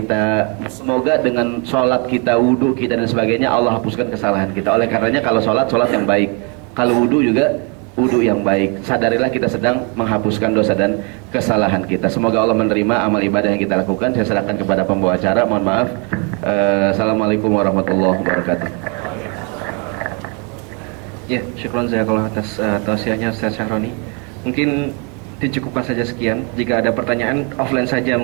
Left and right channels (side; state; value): left; quieter; 33.7 dB